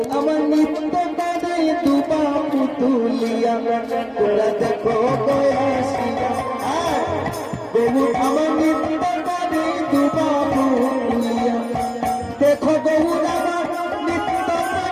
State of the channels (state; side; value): identical; both; correlation 1.00